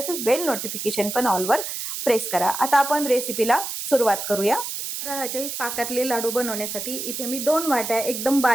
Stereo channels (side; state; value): right; noise; hiss, 5 dB below the sound